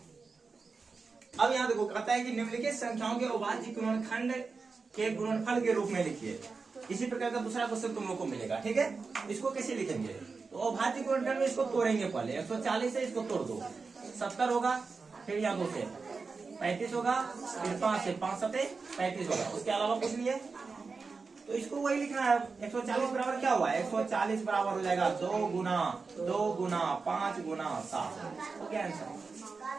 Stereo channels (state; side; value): quieter; left; 4.5 dB